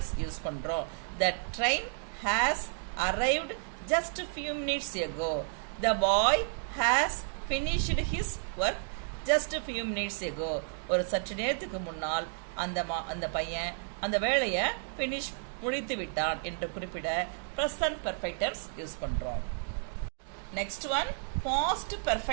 யூஸ் பண்றோம். The train has arrived just a few minutes ago. The boy has finished his work just a few minutes ago. ஒரு சற்று நேரத்துக்கு முன்னால் அந்த பையன் அந்த வேலையை finish முடித்து விட்டான் என்று குறிப்பிட present perfect tense யூஸ் பண்றோம். Next one, past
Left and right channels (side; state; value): left; silent; 56 dB below the other